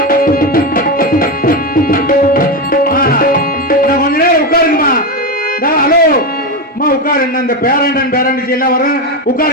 இந்த பேரண்டன் பேரண்டிச்சு எல்லாம் வரும்,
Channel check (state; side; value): normal; both; correlation 0.13